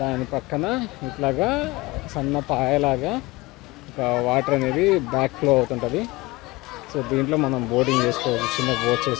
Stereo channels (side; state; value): right; quieter; 22.1 dB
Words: పక్కన ఇట్లాగా సన్న పాయలాగా ఒక వాటర్ అనేది బ్యాక్ ఫ్లో అవుతుంటుంది. సో దీంట్లో మనం బోటింగ్ చేసుకోవచ్చు, చిన్న బోట్